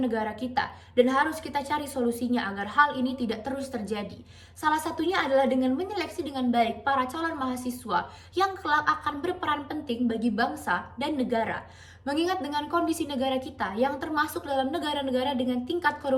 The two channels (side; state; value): both; identical; correlation 1.00